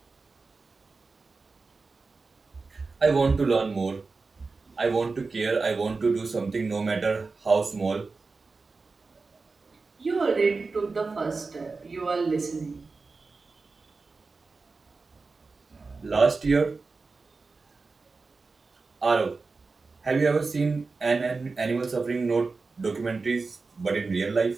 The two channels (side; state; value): left; quieter; 4.1 dB